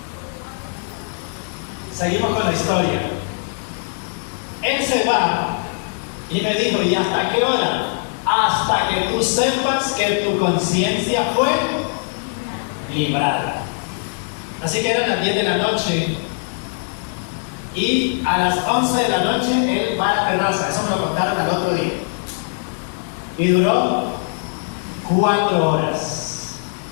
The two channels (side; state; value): right; silent; digital silence